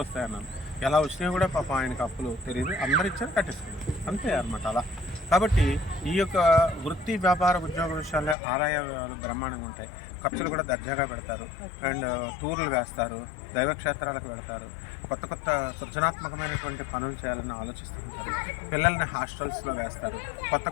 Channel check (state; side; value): drops out; right; at 8.3 s